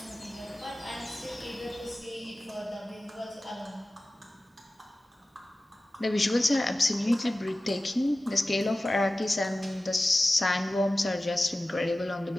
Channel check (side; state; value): both; normal; correlation 0.96